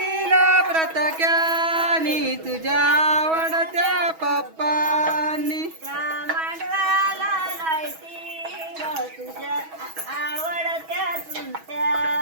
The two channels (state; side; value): late; left; 6.2 ms